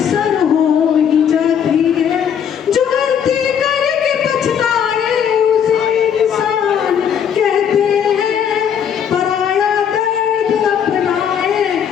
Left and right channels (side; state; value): right; quieter; 8.2 dB